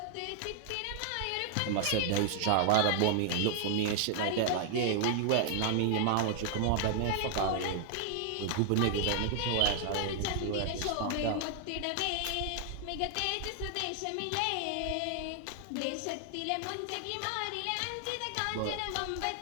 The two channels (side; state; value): both; different; correlation 0.00